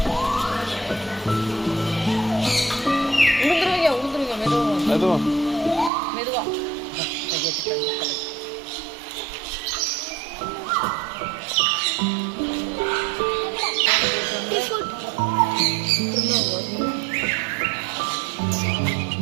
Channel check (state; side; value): drops out; left; at 5.9 s